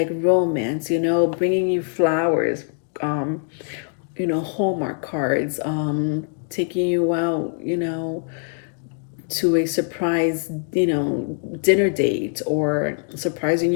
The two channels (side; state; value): right; silent; 61 dB below the other